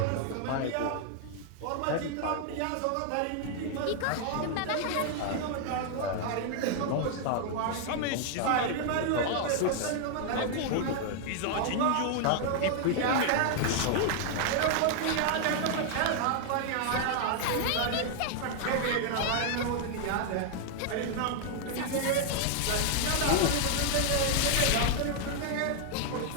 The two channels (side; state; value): both; different; correlation 0.00